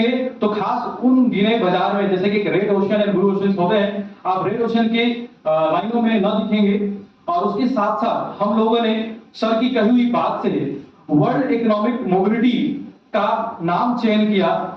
तो खास उन गिने बाजार में, जैसे कि red ocean and blue ocean होते हैं, आप रेड ओशन के लाइनों में न दिखेंगे। और उसके साथ साथ हम लोगों ने सर की कही हुई बात से वर्ल्ड इकोनॉमिक मोबिलिटी का नाम चयन किया,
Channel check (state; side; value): identical; both; correlation 1.00